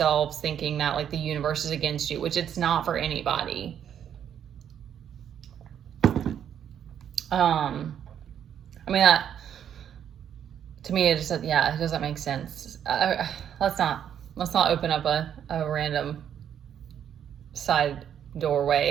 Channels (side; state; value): left; quieter; 9.2 dB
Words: thinking that like the universe is against you, which it's not for anybody. I mean, that, to me, it just, yeah, it doesn't make sense. Let's not open up a random side